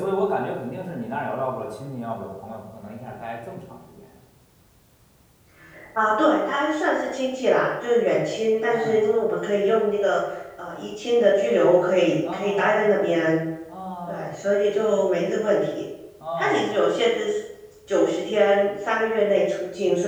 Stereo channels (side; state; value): both; identical; correlation 1.00